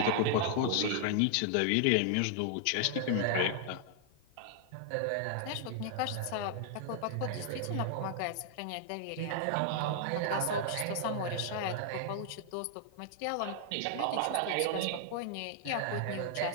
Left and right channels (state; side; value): different; both; correlation 0.00